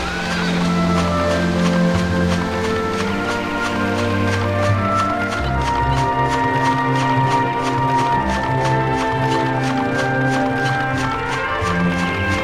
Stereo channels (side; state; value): both; identical; correlation 1.00